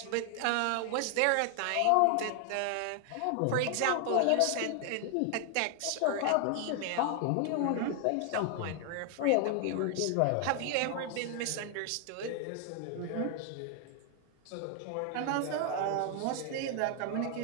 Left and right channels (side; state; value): both; different; correlation 0.00